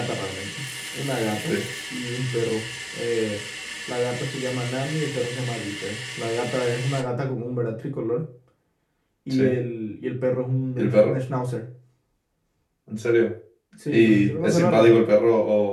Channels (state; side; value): identical; both; correlation 1.00